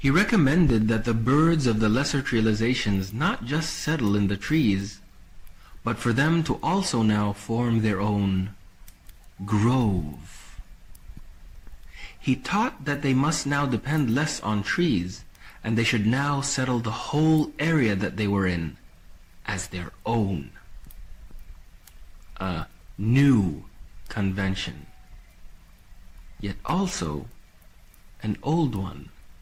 recommended that the birds of the lesser realizations not just settle in the trees, but for them to also now form their own grove. He taught that they must now depend less on trees, and they should now settle the whole area that they were in as their own. A new convention, yet also an old one.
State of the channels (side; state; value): both; identical; correlation 1.00